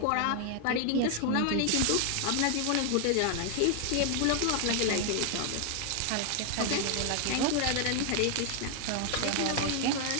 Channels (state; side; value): different; both; correlation 0.00